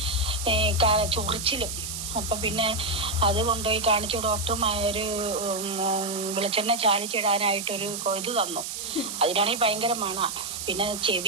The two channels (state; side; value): noise; right; hiss, 6 dB below the sound